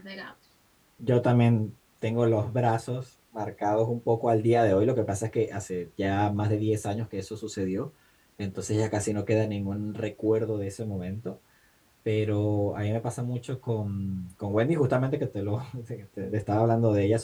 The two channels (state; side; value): identical; both; correlation 1.00